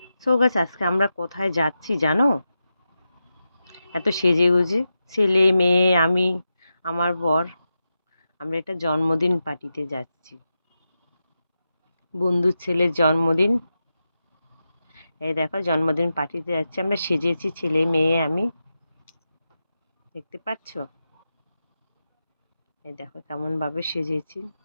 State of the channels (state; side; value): inverted; both; correlation -0.90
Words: So guys, আজকে আমরা কোথায় যাচ্ছি জানো? এত সেজে গুজে ছেলে মেয়ে আমি আমার বর আমরা একটা জন্মদিন পার্টিতে যাচ্ছি। বন্ধুর ছেলের জন্মদিন। এই দেখো, জন্মদিন পার্টিতে যাচ্ছি আমরা, সেজেছি ছেলে মেয়ে আমি, দেখতে পাচ্ছ? এই দেখো কেমন ভাবে সেজেছি।